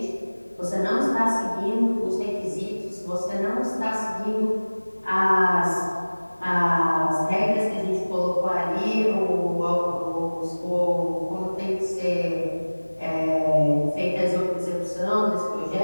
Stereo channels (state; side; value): inverted; both; correlation -1.00